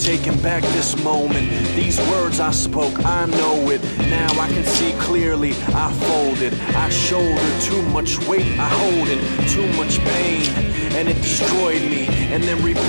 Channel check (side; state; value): both; inverted; correlation -1.00